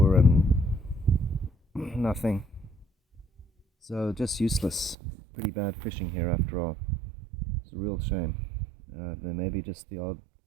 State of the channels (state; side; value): drops out; left; at 5.0 s